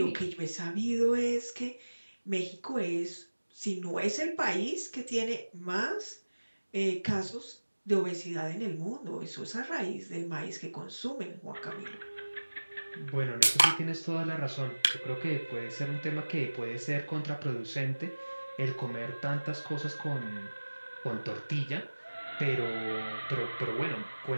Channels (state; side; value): inverted; both; correlation -1.00